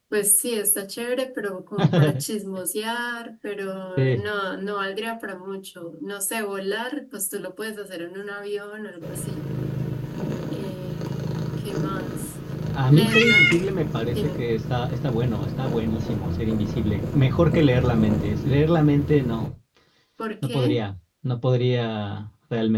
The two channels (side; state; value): both; identical; correlation 1.00